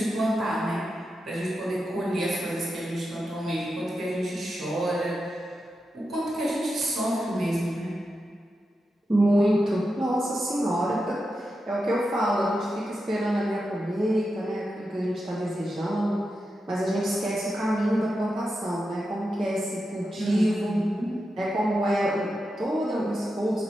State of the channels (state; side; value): normal; both; correlation 0.89